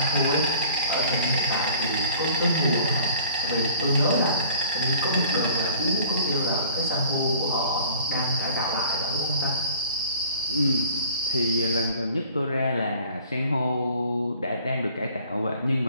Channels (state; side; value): inverted; both; correlation -0.49